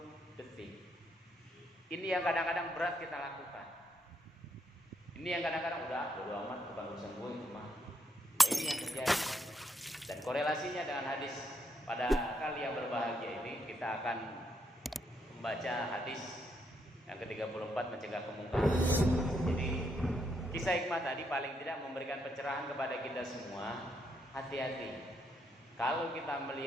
detik. Ini yang kadang-kadang berat kita lakukan. Ini yang kadang-kadang udah bodo amat, bukan urusan gue itu mah. Nah, ini yang terjadi. Dan korelasinya dengan hadis pada kali yang berbahagia ini, kita akan membaca hadis yang ke-34 mencegah kemungkaran. Jadi kisah hikmah tadi paling tidak memberikan pencerahan kepada kita semua. Hati-hati. Kalau kita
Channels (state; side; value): normal; both; correlation 0.77